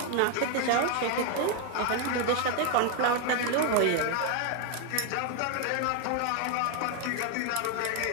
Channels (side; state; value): both; different; correlation 0.01